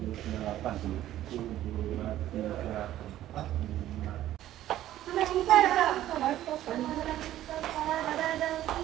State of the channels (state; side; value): quieter; left; 13.3 dB